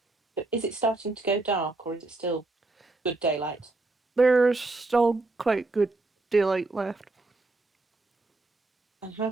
Is it starting to go dark or is it still good daylight? There's still quite good daylight left. And how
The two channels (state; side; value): quieter; left; 3.2 dB